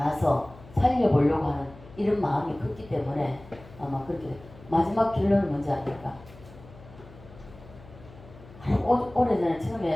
살려보려고 하는 이런 마음이 컸기 때문에 아마 그렇게 마지막 결론은 뭔지 아닙니까? 오래전에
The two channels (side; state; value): left; noise; hum, 20 dB below the sound